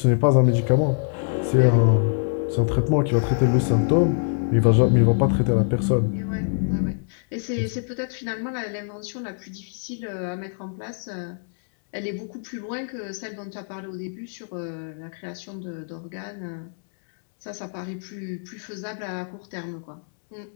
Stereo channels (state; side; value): silent; right; 62 dB below the other